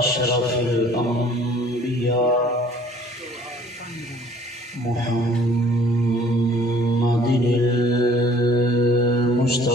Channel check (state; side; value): normal; both; correlation 0.54